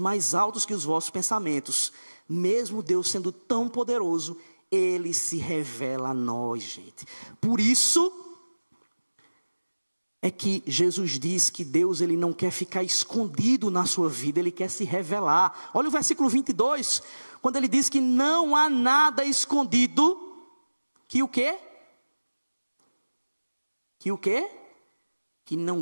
altos que os vossos pensamentos. Mesmo Deus sendo tão poderoso, Ele se revela a nós, gente. Por isso é que Jesus diz que Deus, Ele não quer ficar escondido na sua vida, Ele quer se revelar. Olha o versículo 22, quando Ele diz que não há nada escondido, que o quê? Que o quê? Que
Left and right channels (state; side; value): inverted; both; correlation -1.00